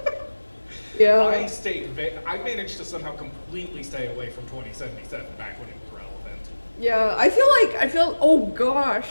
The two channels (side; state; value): both; inverted; correlation -1.00